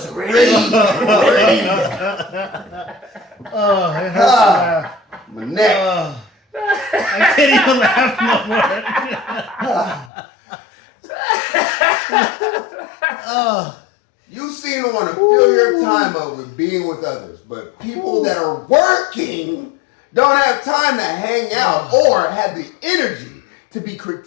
ready. Oh, it hurts to laugh. My neck. I can't even laugh no more. You seem to want to fill your time up with being with others, but people that are working don't have time to hang out or have the energy to be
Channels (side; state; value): right; drops out; at 10.1 s